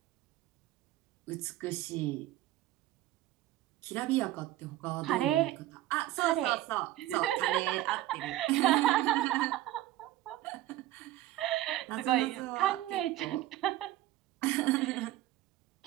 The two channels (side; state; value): left; quieter; 14.9 dB